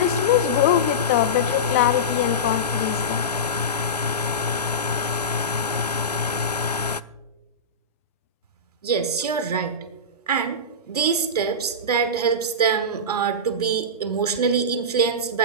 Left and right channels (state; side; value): normal; both; correlation -0.17